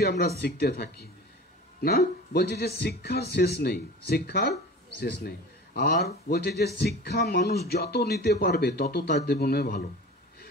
আমরা শিখতে থাকি, না? বলছে যে শিক্ষার শেষ নেই, শিক্ষার শেষ নেই। আর বলছে যে শিক্ষা মানুষ যত নিতে পারবে তত তার জীবনে ভালো,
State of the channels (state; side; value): normal; both; correlation 0.37